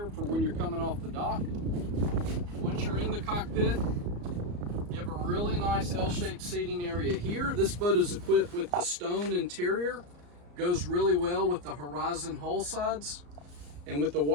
for when you're coming off the dock. Once you're in the cockpit, you have a really nice L-shaped seating area here. This boat is equipped with the stone interior. Goes really well with the Horizon hull sides. And with the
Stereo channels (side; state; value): left; late; 34 ms